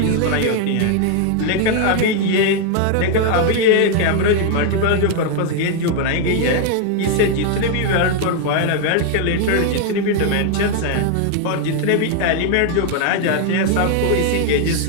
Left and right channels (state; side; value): different; both; correlation 0.00